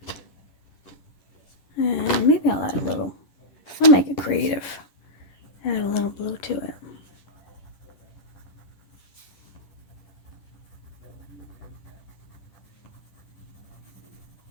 And maybe I'll add a little, I'll make it creative. Add a little blue to it.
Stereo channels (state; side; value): late; right; 10 ms